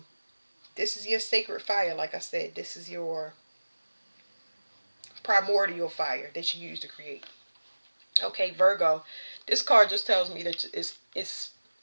this is your sacred fire. Like I said, this is your primordial fire that you use to create. Okay, Virgo. This card just tells me that it's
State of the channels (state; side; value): inverted; both; correlation -1.00